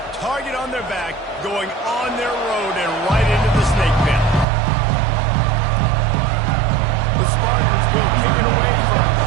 target on their back, going on their road and right into the snake pit. The Spartans will kick it away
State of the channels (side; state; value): left; drops out; at 4.5 s